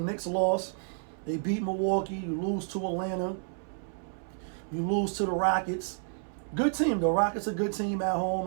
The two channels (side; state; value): left; silent; 58 dB below the other